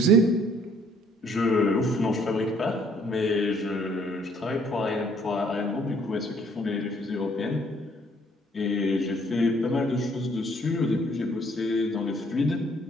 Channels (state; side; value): normal; both; correlation 0.63